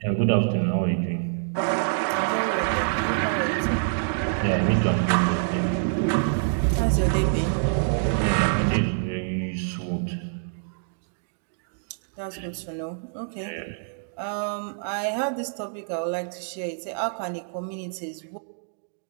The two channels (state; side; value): silent; left; digital silence